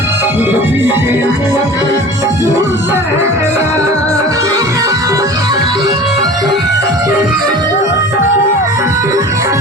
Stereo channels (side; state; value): both; normal; correlation 0.39